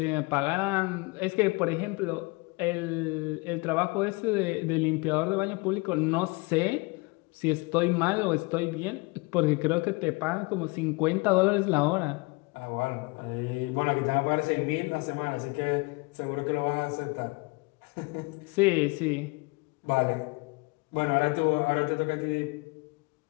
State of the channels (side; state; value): right; quieter; 26.9 dB